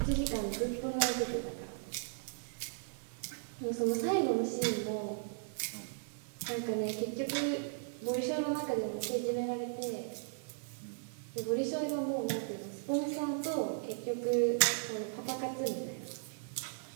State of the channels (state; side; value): silent; left; digital silence